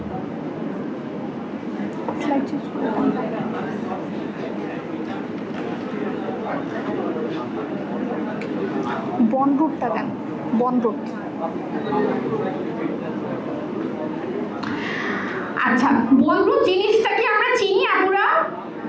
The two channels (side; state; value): both; identical; correlation 1.00